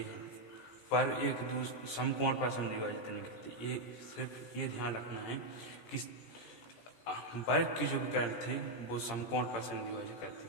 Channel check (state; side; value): late; right; 17 ms